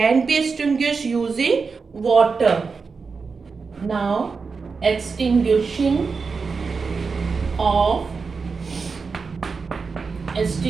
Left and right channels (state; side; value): quieter; left; 4.9 dB